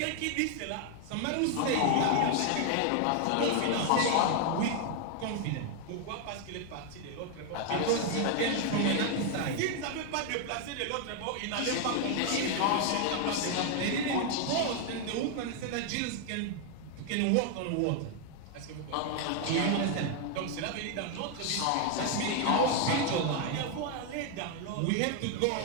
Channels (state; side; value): different; both; correlation 0.00